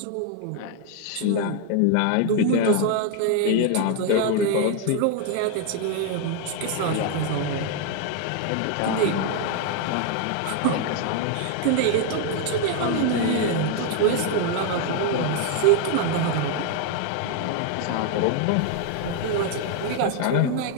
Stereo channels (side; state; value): both; different; correlation 0.00